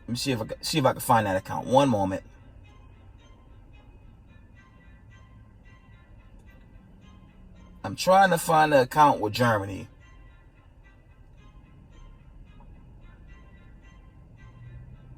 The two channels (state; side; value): identical; both; correlation 1.00